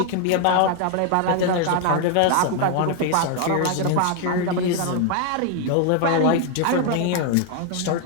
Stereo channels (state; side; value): different; both; correlation 0.00